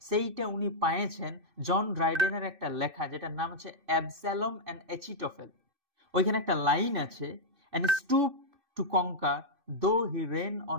সেইটা উনি পাইয়েছেন জন ড্রাইডেনের একটা লেখা, যেটার নাম হচ্ছে অ্যাবস্যালম অ্যান্ড এচিটোফেল। ওইখানে একটা লাইন আছে, অ্যান্ড স্টুপ টু কঙ্কার দো হি রেন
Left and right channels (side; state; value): left; late; 2.6 ms